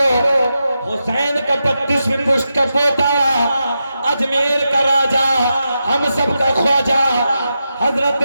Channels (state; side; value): inverted; both; correlation -0.89